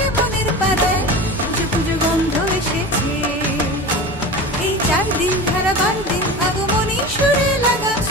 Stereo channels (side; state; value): both; normal; correlation 0.31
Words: মনের পাড়ায়, পুজো পুজো গন্ধ এসেছে। এই 4 দিন হারাবার দিন আগমনী সুরে লাগা